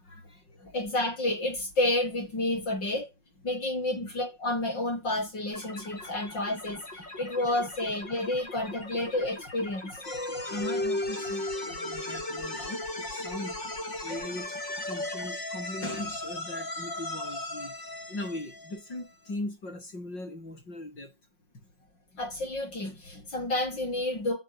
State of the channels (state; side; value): late; right; 5.6 ms